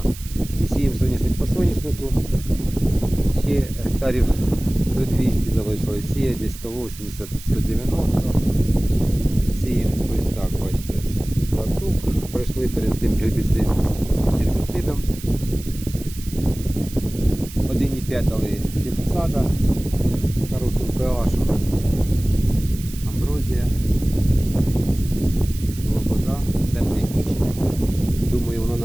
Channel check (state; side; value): noise; right; hiss, 16 dB below the sound